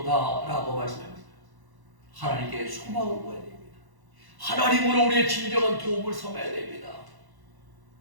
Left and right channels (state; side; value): late; left; 1.1 ms